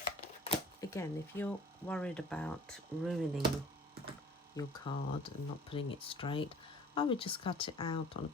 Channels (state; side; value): normal; both; correlation 0.48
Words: Again, if you're worried about ruining your card and not putting it straight, I would just cut it out on a